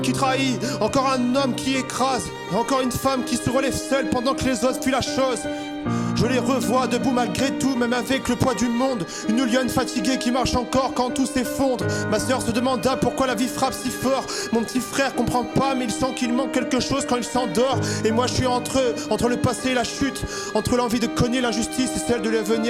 trahit, encore un homme qui écrase, encore une femme qui se relève seule pendant que les autres fuient la chose. Je les revois debout malgré tout, même avec le poids du monde. Une lionne fatiguée qui marche encore quand tout s'effondre. Ma sœur se demanda pourquoi la vie frappe si fort. Mon petit frère comprend pas mais il sent qu'il manque quelque chose quand il s'endort. Et moi je suis entre eux, entre le passé et la chute, entre l'envie de cogner l'injustice et celle de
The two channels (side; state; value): both; identical; correlation 1.00